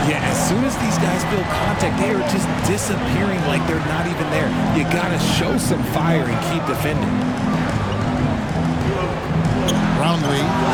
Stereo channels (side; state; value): both; identical; correlation 1.00